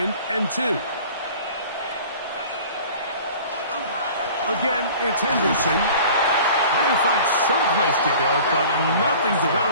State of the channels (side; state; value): both; inverted; correlation -0.44